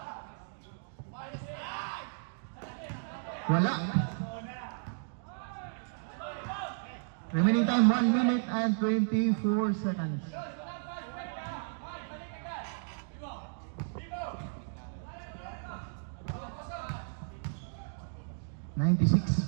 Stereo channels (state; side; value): silent; left; digital silence